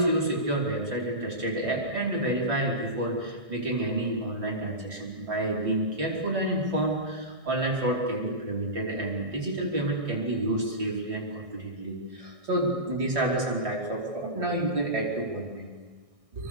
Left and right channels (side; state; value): left; late; 1.6 ms